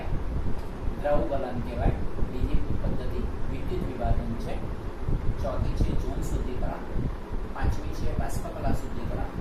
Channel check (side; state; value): both; identical; correlation 1.00